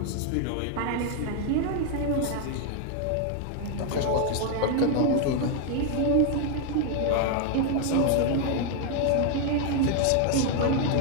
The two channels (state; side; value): different; both; correlation 0.01